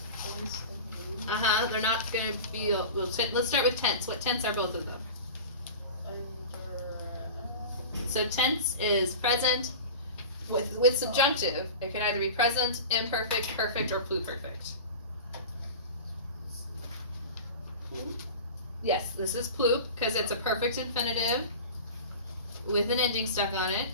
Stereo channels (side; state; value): both; inverted; correlation -0.33